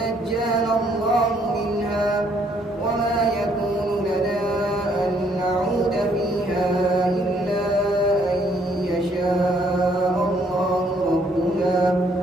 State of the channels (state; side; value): normal; both; correlation 0.67